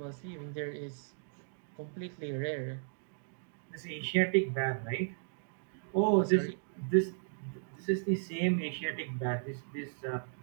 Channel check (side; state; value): left; silent; digital silence